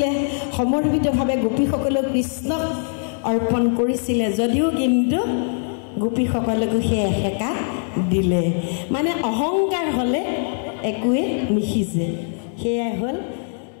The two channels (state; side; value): silent; right; digital silence